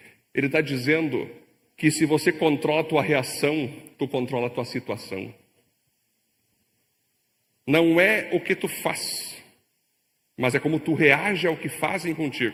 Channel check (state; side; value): identical; both; correlation 1.00